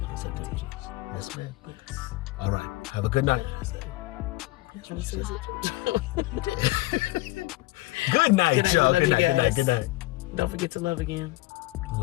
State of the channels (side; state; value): right; quieter; 20.0 dB